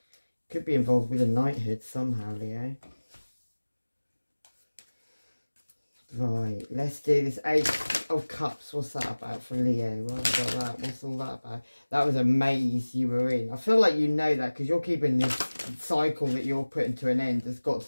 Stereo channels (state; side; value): inverted; both; correlation -1.00